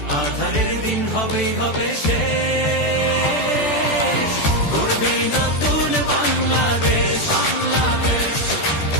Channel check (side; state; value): right; late; 14 ms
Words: আধারের দিন হবেই হবে শেষ। গড়বে নতুন বাংলাদেশ,